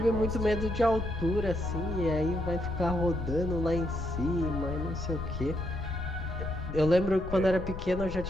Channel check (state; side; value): noise; left; rumble, 8 dB below the sound